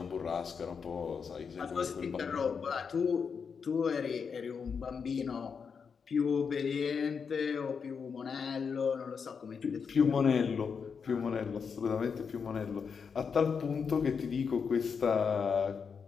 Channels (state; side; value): quieter; right; 6.0 dB